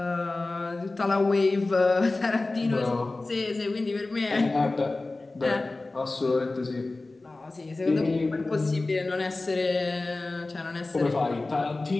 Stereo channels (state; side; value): quieter; right; 3.2 dB